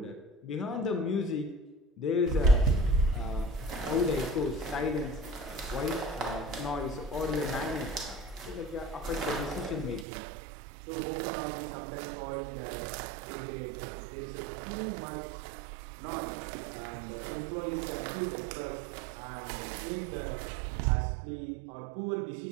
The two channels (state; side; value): drops out; left; at 10.1 s